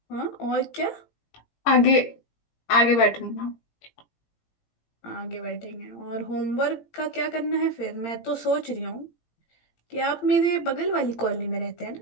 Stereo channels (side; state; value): right; late; 18 ms